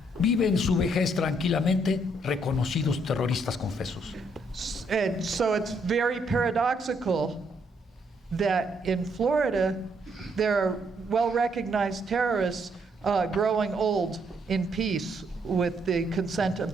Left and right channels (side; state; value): both; normal; correlation 0.72